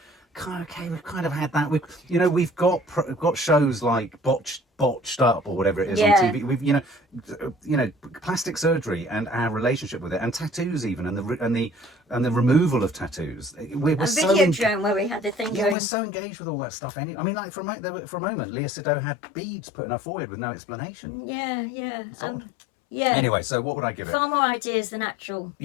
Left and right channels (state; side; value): drops out; right; at 15.8 s